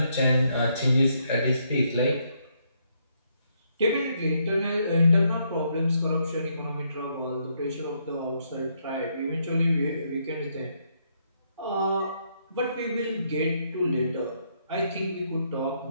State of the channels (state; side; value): inverted; both; correlation -0.75